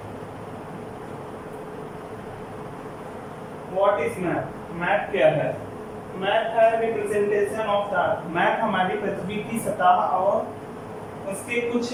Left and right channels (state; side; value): identical; both; correlation 1.00